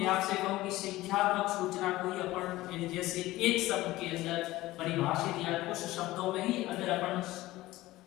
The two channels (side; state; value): right; quieter; 17.5 dB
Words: आपसे कहूं कि संख्यात्मक सूचना को ही अपन जैसे एक शब्द के अंदर परिभाषित या कुछ शब्दों में ही अगर अपन